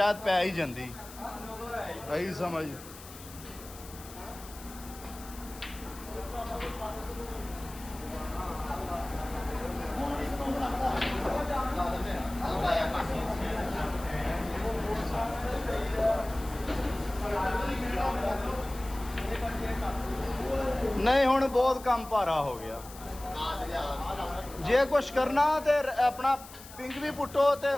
ਪੈ ਹੀ ਜਾਂਦੀ ਇਹੀ ਸਮਝ ਨਹੀਂ ਹੁਣ ਬਹੁਤ ਕੰਮ ਭਾਰਾ ਹੋ ਗਿਆ ਜੇ ਕੁਛ ਕਰਨਾ ਤੇ ਆਪਣਾ ਪਿੰਕ ਵੀ ਪੁੱਟੋ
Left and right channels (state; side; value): noise; left; hiss, 17 dB below the sound